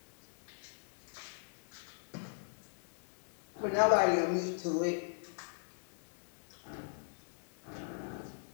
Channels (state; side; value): silent; right; digital silence